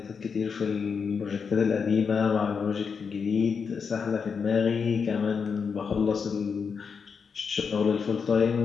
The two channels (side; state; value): right; quieter; 5.9 dB